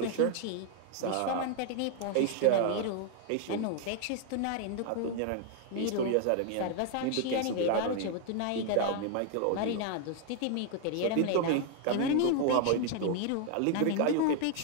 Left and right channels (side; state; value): both; different; correlation 0.00